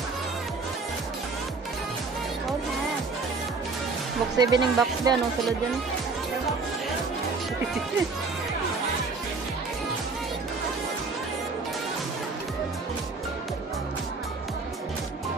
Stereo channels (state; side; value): quieter; left; 4.1 dB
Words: Box 7 yung box ba? Anong sulod yan?